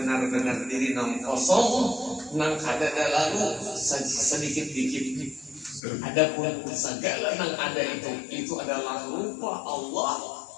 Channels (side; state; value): right; drops out; at 5.8 s